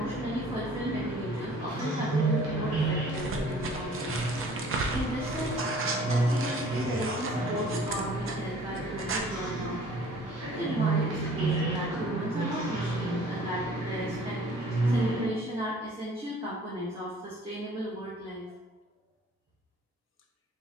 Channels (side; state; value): both; normal; correlation 0.52